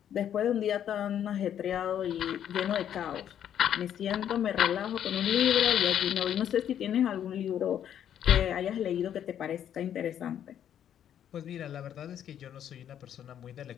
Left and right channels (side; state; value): right; quieter; 9.9 dB